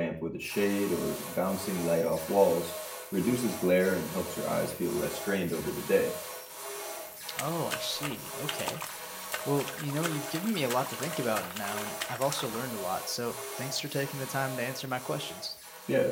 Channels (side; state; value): both; identical; correlation 1.00